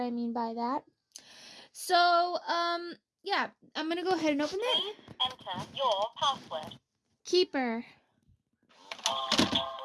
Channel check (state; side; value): identical; both; correlation 1.00